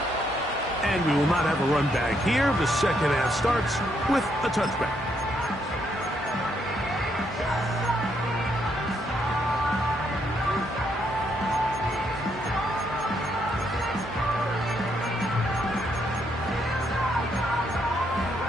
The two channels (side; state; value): both; normal; correlation 0.75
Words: And we will not have a run back here. The second half starts with a touchback.